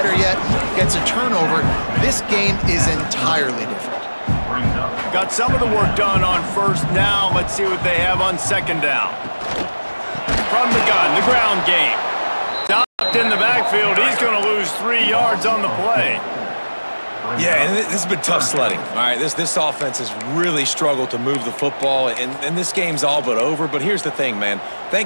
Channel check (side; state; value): both; inverted; correlation -1.00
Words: yet, gets a turnover. This game is entirely different. Got some of the work done on 1st. Now let's see what they have on 2nd down. From the gun, the ground game. Stopped in the backfield. He's going to lose 3 yards on the play. Yeah, and this has been tough sledding. All right, this offense has really struggled to move the football, and this game's all but over. But here's the thing, man.